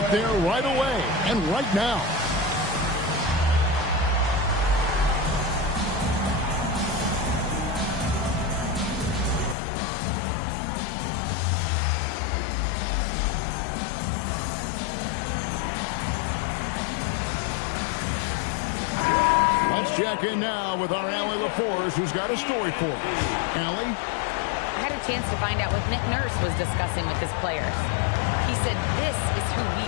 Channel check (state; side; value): drops out; right; at 9.6 s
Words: there right away and right now. Let's check in now with our Allie LaForce, who's got a story for us. Allie? I had a chance to find out what Nick Nurse was discussing with his players. He said, this is who